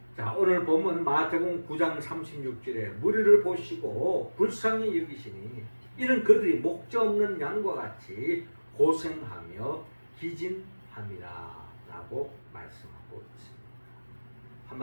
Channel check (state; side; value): inverted; both; correlation -1.00